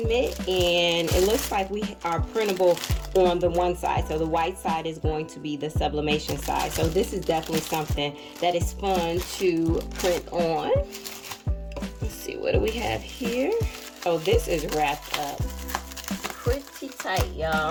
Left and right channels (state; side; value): identical; both; correlation 1.00